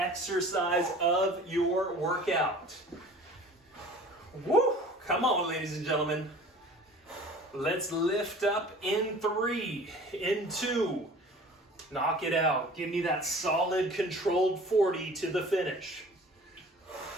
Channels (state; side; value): normal; both; correlation 0.45